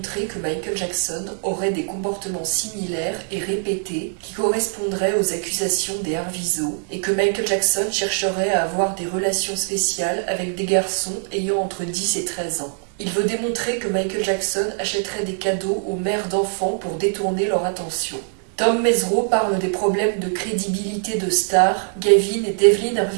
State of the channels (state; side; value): silent; left; 64 dB below the other